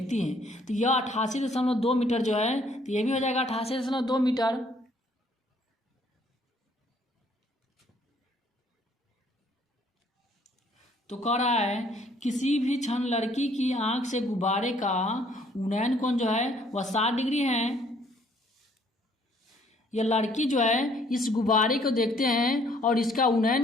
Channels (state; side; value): normal; both; correlation 0.63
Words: हैं। तो यह 88.2 मीटर जो है, तो यह भी हो जाएगा 88.2 मीटर। तो कह रहा है किसी भी क्षण लड़की की आंख से गुब्बारे का उन्नयन कोण जो है वह 60 डिग्री है। यह लड़की जो है इस गुब्बारे को देखते हैं और इसका